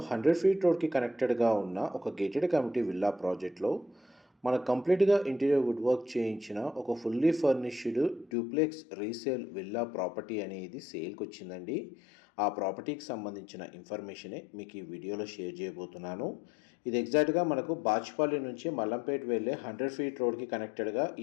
100 ఫీట్ రోడ్కి కనెక్టెడ్గా ఉన్న ఒక గేటెడ్ కమ్యూనిటీ విల్లా ప్రాజెక్ట్లో మన కంప్లీట్గా ఇంటీరియర్ వుడ్ వర్క్ చేయించిన ఒక fully furnished duplex resale villa property అనేది సేల్కి వచ్చిందండి. ఆ ప్రాపర్టీకి సంబంధించిన ఇన్ఫర్మేషనే మీకు ఈ వీడియోలో షేర్ చేయబోతున్నాను. ఇది ఎగ్జాక్ట్గా మనకు బాచ్పల్లి నుంచి మల్లంపేట్ వెళ్ళే 100 ఫీట్ రోడ్కి కనెక్టెడ్గా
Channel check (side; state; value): right; drops out; at 8.3 s